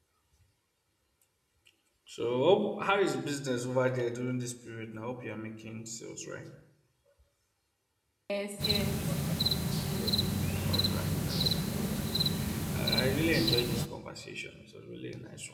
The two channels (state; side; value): identical; both; correlation 1.00